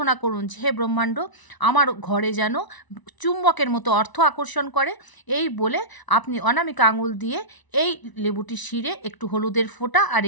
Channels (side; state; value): right; late; 1.0 ms